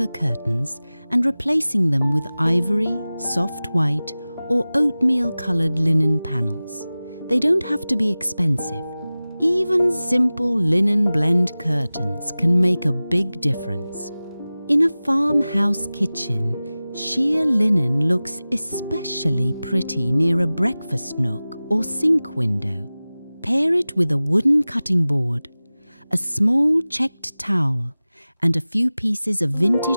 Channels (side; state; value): both; inverted; correlation -0.97